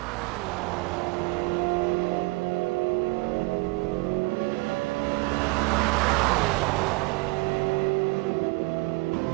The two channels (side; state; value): left; quieter; 25.3 dB